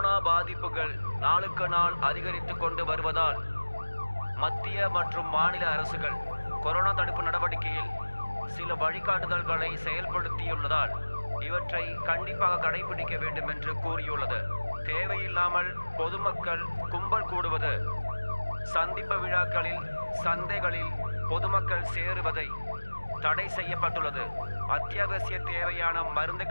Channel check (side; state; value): both; inverted; correlation -1.00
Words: பாதிப்புகள் நாளுக்கு நாள் அதிகரித்து கொண்டு வருவதால் மத்திய மற்றும் மாநில அரசுகள் கொரோனா தடுப்பு நடவடிக்கையில் சில வழிகாட்டுதல்களை செயல்படுத்தியுள்ளதால் இவற்றை கண்டிப்பாக கடைபிடிக்க வேண்டும் என்று கூறியுள்ளது. தேவையில்லாமல் பொதுமக்கள் கும்பல் கூடுவது, சந்திப்பு விழாக்களில், சந்தைகளில் பொதுமக்கள் சேருவதை தடை செய்யப்பட்டுள்ளது. அத்தியாவசிய தேவையான மருந்து